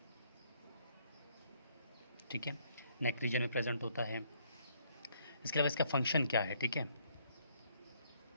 ठीक है, नेक रीजन में प्रेजेंट होता है। इसके अलावा इसका फंक्शन क्या है? ठीक है,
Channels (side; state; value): both; inverted; correlation -0.67